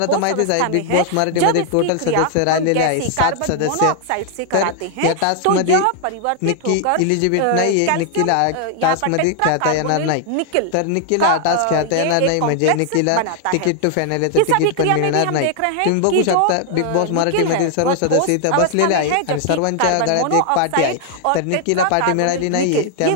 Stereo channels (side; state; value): both; different; correlation 0.00